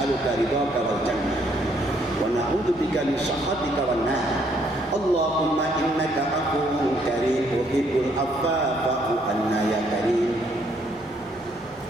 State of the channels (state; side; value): noise; left; hum, 25 dB below the sound